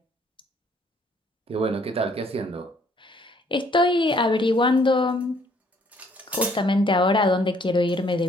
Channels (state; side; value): normal; both; correlation 0.64